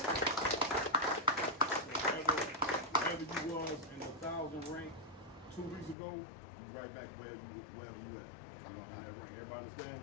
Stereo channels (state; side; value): drops out; right; at 6.0 s